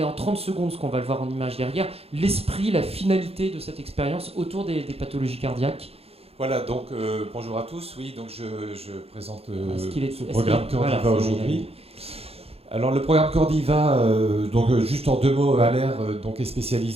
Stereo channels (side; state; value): left; late; 0.29 ms